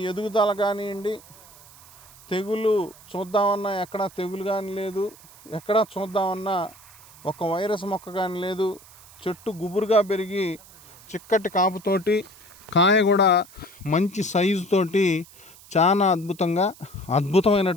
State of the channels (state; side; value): noise; right; hiss, 22 dB below the sound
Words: ఎదుగుదల కానివ్వండి, తెగులు చూద్దామన్నా ఎక్కడా తెగులు కానీ లేదు, ఎక్కడా చూద్దామన్నా ఒక వైరస్ మొక్క కానీ లేదు. చెట్టు గుబురుగా పెరిగి చిక్కటి కాపుతోటి, కాయ కూడా మంచి సైజుతోటి చాలా